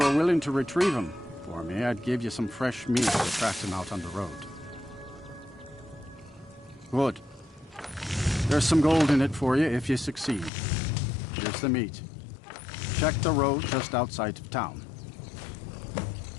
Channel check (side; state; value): right; drops out; at 10.5 s